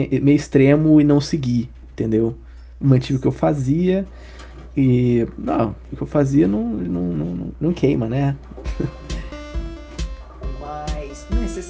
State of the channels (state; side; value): identical; both; correlation 1.00